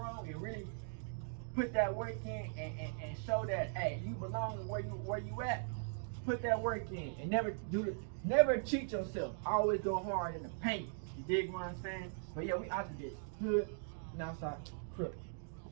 and really put that work in and show that hey, you belong where you at. Put that work in and never cheat yourself. Always go hard in the paint. You dig what I'm saying? But yeah, we out to this hood and outside crook.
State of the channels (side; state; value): left; silent; digital silence